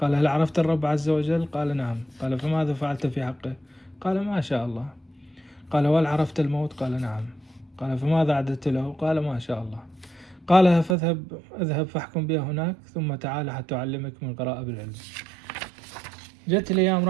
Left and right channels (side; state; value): left; drops out; at 11.0 s